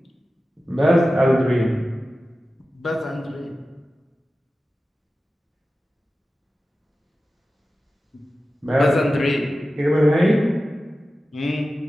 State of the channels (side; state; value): both; normal; correlation 0.94